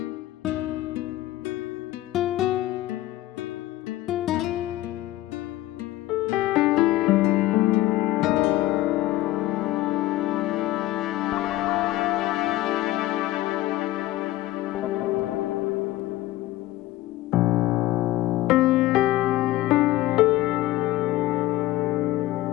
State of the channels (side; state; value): right; quieter; 16.3 dB